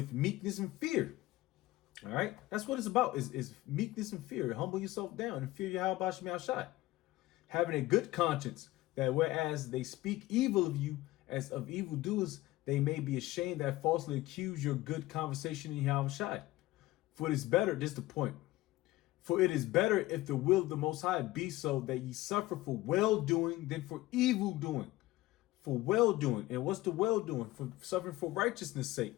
meekness and fear. All right, that's what it's about: is meekness and fear. Humble yourself down and fear Yahweh Bashim Yahushai. Having a good conscience, that whereas they speak evil of you as of evildoers, they may be ashamed that falsely accuse your good conversation in Yahushai. For it is better, this is the point. For it is better if the will of the Most High be so, that ye suffer for well-doing than for evil-doing. For well-doing. And what's the well-doing? For suffering for righteousness' sake,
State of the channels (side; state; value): right; quieter; 17.8 dB